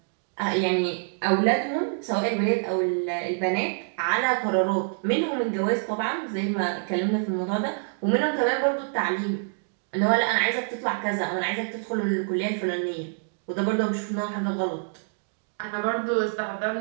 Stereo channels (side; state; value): left; silent; digital silence